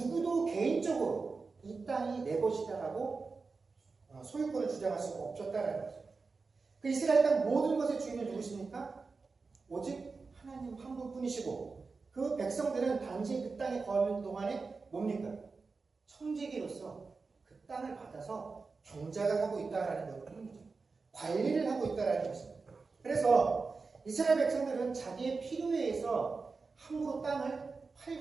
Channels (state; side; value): quieter; left; 4.3 dB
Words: 개인적으로 이 땅이 내 것이다라고 소유권을 주장할 수가 없었다라는 거죠. 그 이스라엘 땅 모든 것의 주인은 누구십니까? 오직 하나님 한 분뿐이시고 그 백성들은 단지 그 땅에 거하는 동안에 뭡니까? 청지기로서 그 땅을 받아서 경작을 하고 있다라는 것입니다. 관리를 하고 있다라는 것입니다. 그래서 이스라엘 백성들은 자기의 필요에 의해서 함부로 땅을